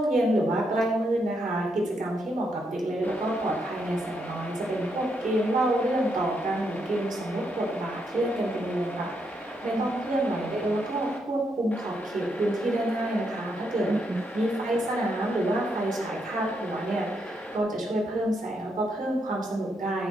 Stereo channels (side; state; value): both; normal; correlation 0.79